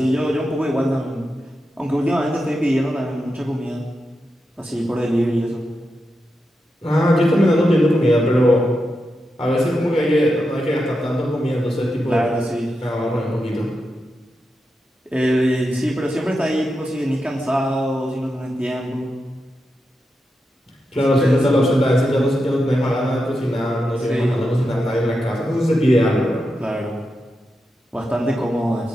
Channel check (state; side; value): normal; both; correlation 0.88